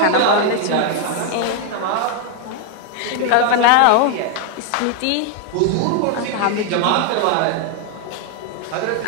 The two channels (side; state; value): both; different; correlation 0.01